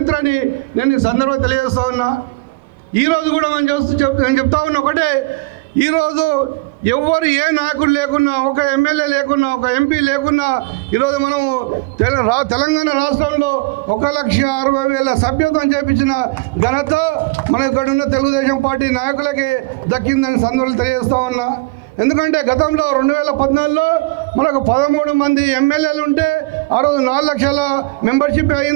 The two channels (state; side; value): quieter; left; 24.1 dB